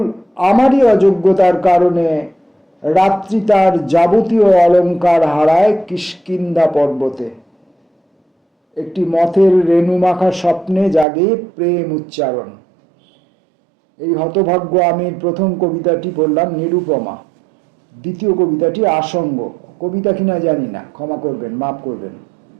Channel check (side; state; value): left; drops out; at 11.1 s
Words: আমারই অযোগ্যতার কারণে রাত্রি তার যাবতীয় অলঙ্কার হারায় কিষ্কিন্ধা পর্বতে। একটি মথের রেণুমাখা স্বপ্নে জাগে প্রেম উচ্চারণ। এই হতভাগ্য আমির প্রথম কবিতাটি পড়লাম নিরুপমা। দ্বিতীয় কবিতাটি আসঙ্গ। কবিতা কিনা জানি না, ক্ষমা করবেন, মাফ করবেন।